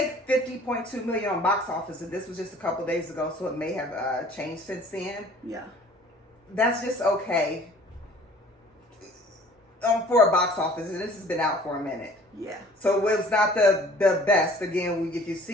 $50.2 million on box office, and this was just a couple days ago, so it may have changed since then. Yeah. That's just okay for a box office, and this has been out for a minute. Yeah. So it was not the best. Again, if you've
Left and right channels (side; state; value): both; normal; correlation 0.51